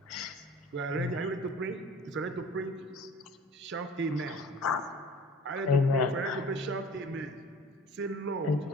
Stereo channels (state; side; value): normal; both; correlation 0.45